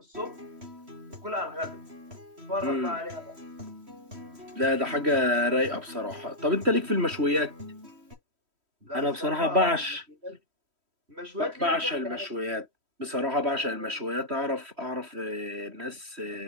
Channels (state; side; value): late; left; 3.1 ms